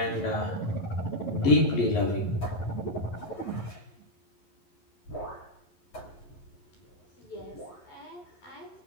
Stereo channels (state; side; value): late; right; 11 ms